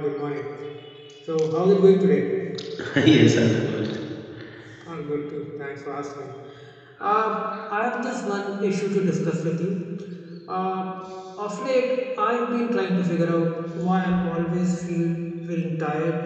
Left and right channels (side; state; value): both; identical; correlation 1.00